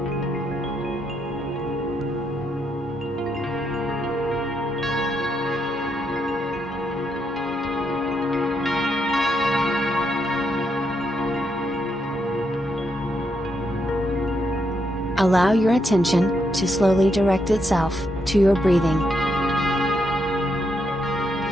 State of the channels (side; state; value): both; normal; correlation 0.79